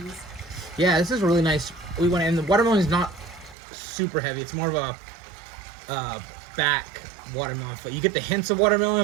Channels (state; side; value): drops out; left; at 3.6 s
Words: Yeah, this is really nice. And the watermelon is not super heavy. It's more of a back watermelon. You get the hints of